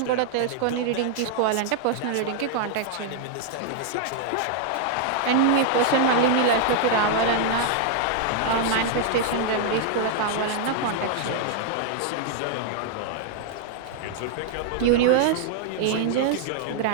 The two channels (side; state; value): both; different; correlation -0.01